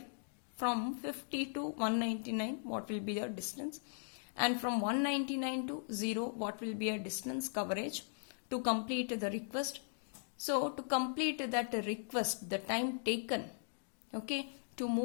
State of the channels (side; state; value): right; silent; digital silence